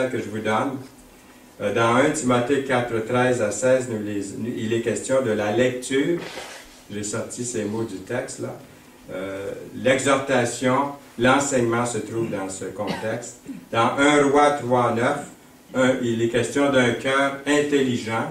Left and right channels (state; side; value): identical; both; correlation 1.00